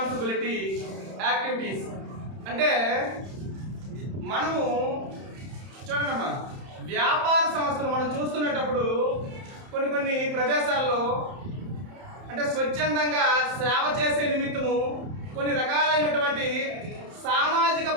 యాక్టివిటీస్. అంటే మనము చూడండమ్మా, వ్యాపార సంస్థలు మనం చూస్తున్నప్పుడు కొన్ని ప్రదేశాల్లో అంటే స్వచ్ఛందంగా సేవ చేసే నిమిత్తము కొన్ని రకాలైనటువంటి సామాజిక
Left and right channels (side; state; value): left; late; 31 ms